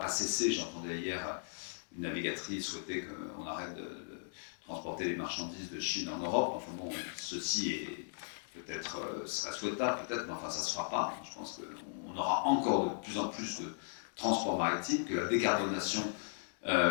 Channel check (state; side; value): silent; right; digital silence